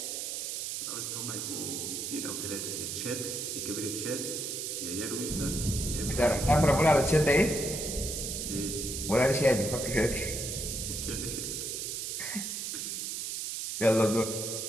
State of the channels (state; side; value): noise; right; hiss, 4 dB below the sound